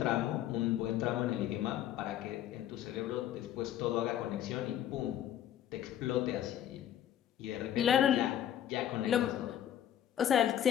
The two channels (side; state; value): right; quieter; 11.0 dB